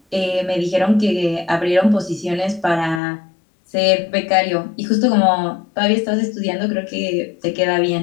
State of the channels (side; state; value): right; drops out; at 3.0 s